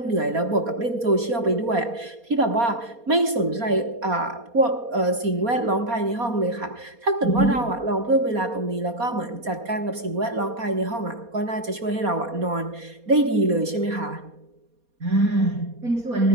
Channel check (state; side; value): late; left; 4.2 ms